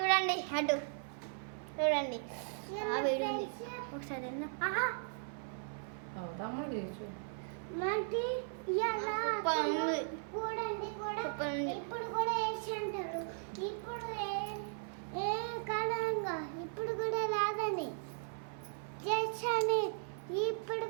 అటు చూడండి ఒకసారి తమ్ముడు తీసు చూడండి కూడా ఇప్పుడు కూడా వేసి అంటారు. ఇప్పుడు ఏ కాలంగా ఇప్పుడు కూడా రాదని చేసాని ఇప్పుడు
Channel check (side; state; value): left; silent; 53 dB below the other